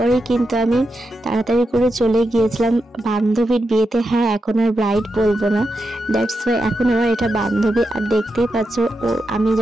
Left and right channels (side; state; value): both; normal; correlation 0.87